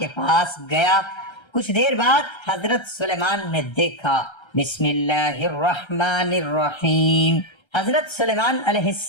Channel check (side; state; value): right; late; 1.3 ms